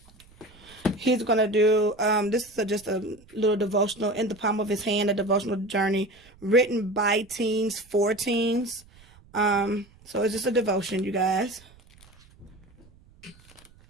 He's going to do, this is just a little devotional in the palm of his hand, a devotional journey written by teens, for teens. So it's just a devotion, you guys.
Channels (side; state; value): right; noise; rumble, 27 dB below the sound